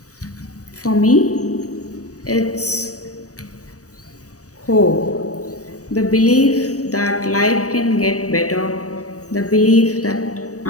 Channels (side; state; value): right; late; 0.66 ms